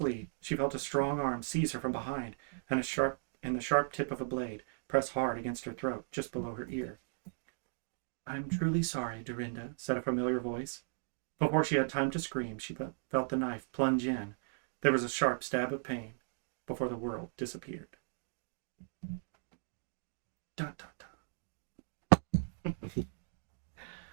she felt a strong arm seize her from behind, and the sharp tip of a blade press hard against her throat, just below her ear. I'm truly sorry, Dorinda, said a familiar voice. Before she had time to scream, she felt the knife plunge in. There was a sharp stab of pain before the world disappeared. Dun, dun, dun.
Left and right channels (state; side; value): silent; left; digital silence